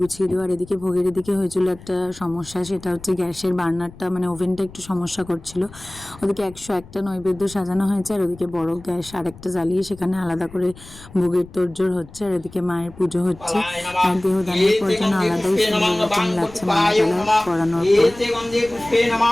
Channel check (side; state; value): left; noise; rumble, 20 dB below the sound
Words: গুছিয়ে দেওয়া। আর এদিকে ভোগের এদিকে হয়েছিল একটা সমস্যা, সেটা হচ্ছে গ্যাসের বার্নারটা মানে ওভেনটা একটু সমস্যা করছিল। ওদিকে 101টা নৈবেদ্য সাজানো হয়েছে, আর ওদিকে বড় গ্যাস আরেকটা জ্বালিয়ে সেখানে আলাদা করে ভোগের তোড়জোড় হচ্ছে। আর এদিকে মায়ের পুজো হচ্ছে। আর দেহদানের পর যেন আলাদাই সুন্দর রকম লাগছে মালা টালা পরানোর